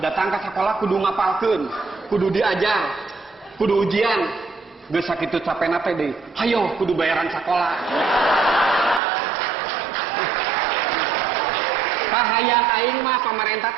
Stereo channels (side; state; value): left; drops out; at 9.0 s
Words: Datang ke sekolah kudu ngapalkeun, kudu diajar, kudu ujian. Geus sakitu capena teh deui. Hayo kudu bayaran sekolah. Kahayang aing mah pamarentah